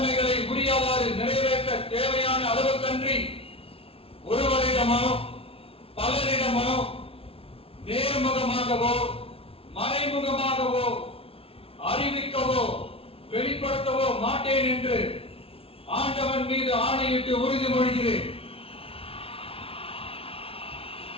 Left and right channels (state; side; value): late; right; 0.27 ms